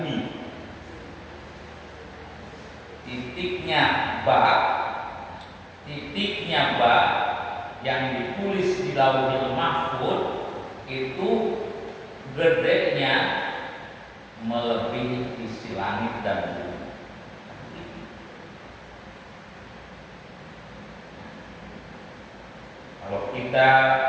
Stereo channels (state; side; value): identical; both; correlation 1.00